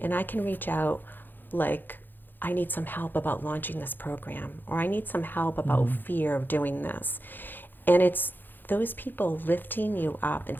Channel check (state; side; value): late; right; 0.092 ms